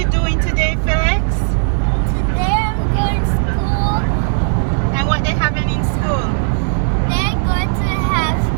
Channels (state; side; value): silent; left; digital silence